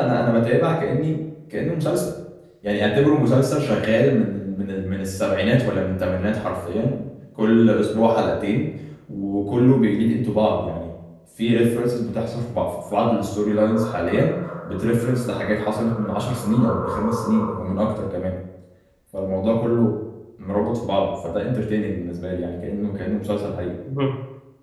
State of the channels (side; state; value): both; identical; correlation 1.00